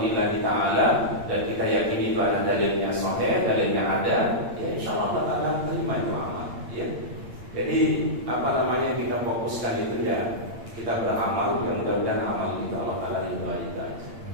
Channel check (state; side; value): late; left; 8.7 ms